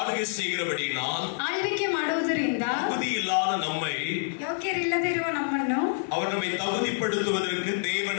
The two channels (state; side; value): silent; right; digital silence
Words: செய்கிறபடியால், ಆಳ್ವಿಕೆ ಮಾಡುವುದರಿಂದ தகுதி இல்லாத நம்மை, ಯೋಗ್ಯರಿಲ್ಲದಿರುವ ನಮ್ಮನ್ನು அவர் நம்மை தகுதிப்படுத்துவதற்கு தேவன்